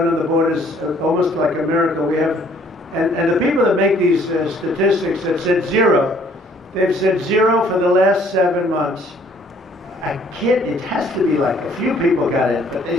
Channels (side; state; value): both; normal; correlation 0.60